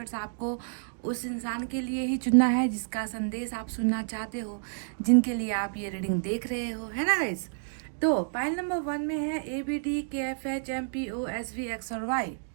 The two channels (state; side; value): silent; left; digital silence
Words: आपको उस इंसान के लिए ही चुनना है जिसका संदेश आप सुनना चाहते हो, जिनके लिए आप ये रीडिंग देख रहे हो, है ना गाइस। तो पायल नंबर 1 में है ABDKFHMPOSV X और Y।